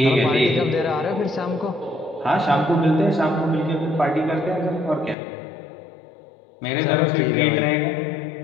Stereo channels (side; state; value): right; drops out; at 5.2 s